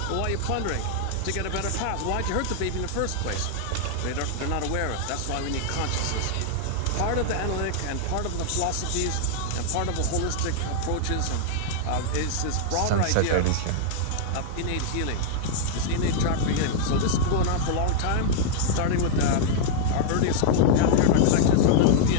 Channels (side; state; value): both; different; correlation -0.01